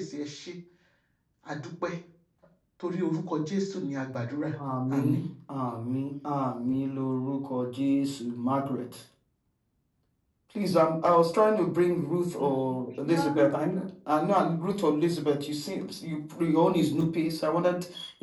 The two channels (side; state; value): both; identical; correlation 1.00